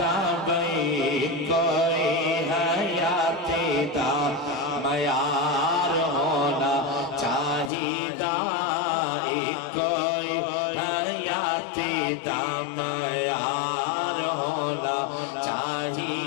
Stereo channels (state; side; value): drops out; right; at 7.7 s